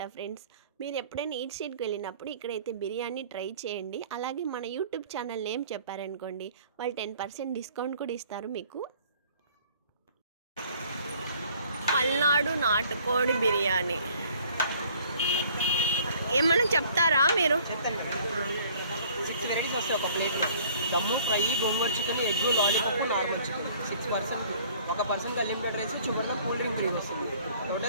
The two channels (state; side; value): inverted; both; correlation -0.55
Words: ఫ్రెండ్స్. మీరు ఎప్పుడైనా ఈట్ స్ట్రీట్కి వెళ్ళినప్పుడు ఇక్కడైతే బిర్యానీ ట్రై చేయండి. అలాగే మన యూట్యూబ్ ఛానల్ నేమ్ చెప్పారనుకోండి, వాళ్ళు 10% డిస్కౌంట్ కూడా ఇస్తారు మీకు. పల్నాడు నాటుకోడి బిర్యానీ ఏమన్నా చెప్తారా మీరు? చెప్తాను కదా. 6 వెరైటీస్ వస్తాయి ఒక ప్లేట్లో. దమ్ము, ఫ్రై, గోంగూర chicken, egg, lollipop, normal chicken. 6 percent. ఒక పర్సన్కి అన్లిమిటెడ్ రైస్, చివరిలో కూల్ డ్రింక్ ఫ్రీ వస్తుంది.